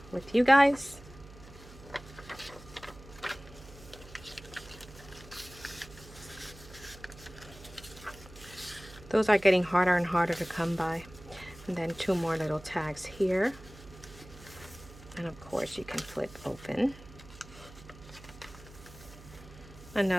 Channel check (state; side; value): noise; right; hum, 19 dB below the sound